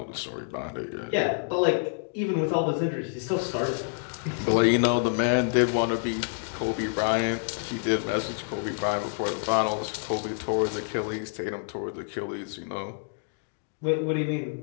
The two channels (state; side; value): silent; right; digital silence